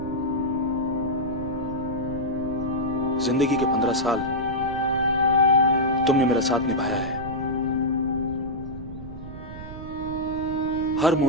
जिंदगी के 15 साल तुमने मेरा साथ निभाया है। हर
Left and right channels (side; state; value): right; noise; rumble, 11 dB below the sound